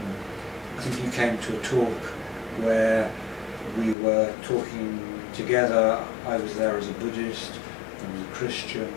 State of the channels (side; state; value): right; drops out; at 4.0 s